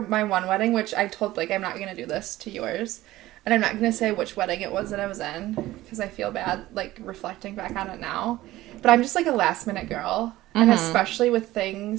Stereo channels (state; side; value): quieter; left; 16.5 dB